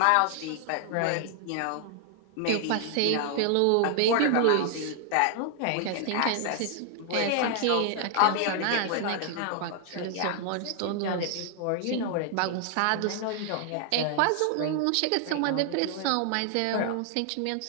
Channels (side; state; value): both; different; correlation 0.00